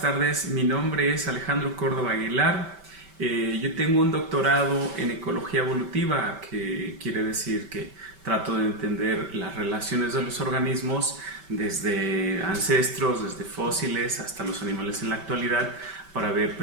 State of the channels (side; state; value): left; late; 5.2 ms